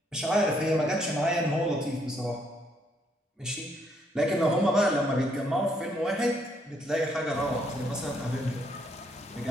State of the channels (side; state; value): both; normal; correlation 0.71